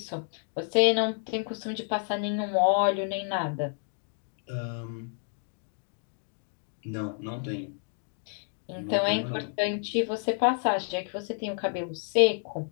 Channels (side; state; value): right; silent; 56 dB below the other